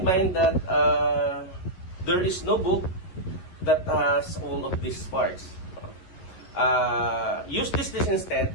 mind that there is no book that has all of these parts. Use this list instead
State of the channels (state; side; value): late; right; 11 ms